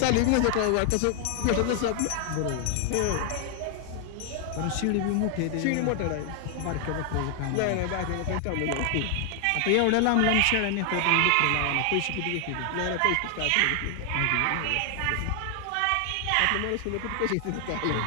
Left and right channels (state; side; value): different; both; correlation 0.00